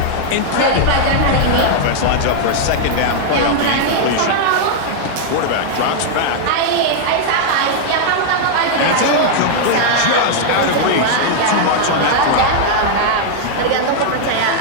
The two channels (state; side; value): different; both; correlation -0.01